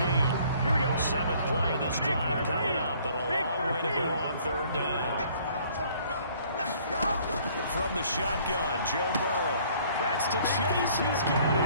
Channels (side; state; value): both; inverted; correlation -0.58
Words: 7th play of this drive coming up, but a long way to go on 3rd down. From the shotgun, Joe Burrow. That's to Chase. He's got